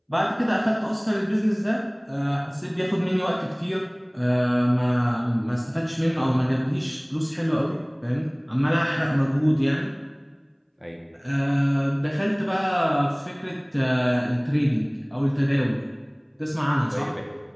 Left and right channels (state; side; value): identical; both; correlation 1.00